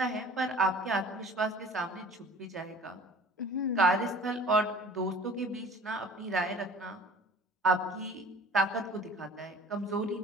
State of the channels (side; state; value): both; normal; correlation 0.46